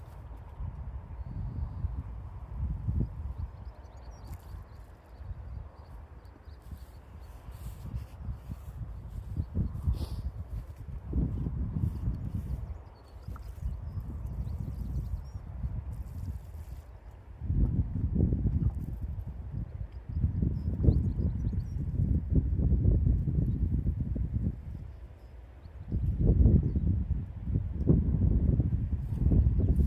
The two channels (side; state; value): both; identical; correlation 1.00